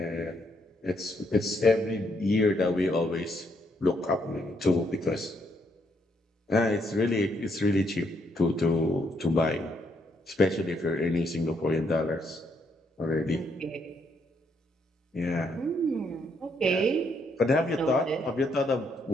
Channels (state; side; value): normal; both; correlation 0.73